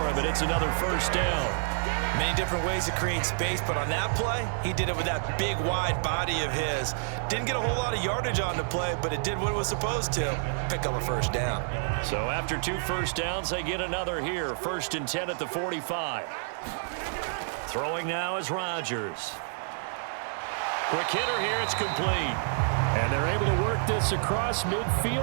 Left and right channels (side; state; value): left; silent; digital silence